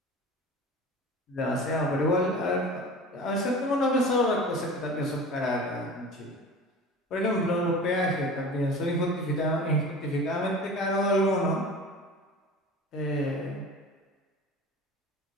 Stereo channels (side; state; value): both; normal; correlation 0.37